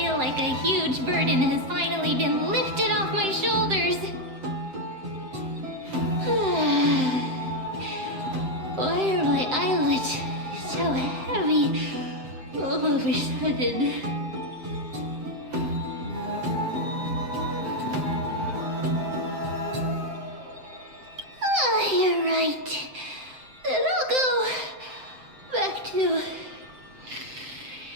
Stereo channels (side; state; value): left; late; 7.7 ms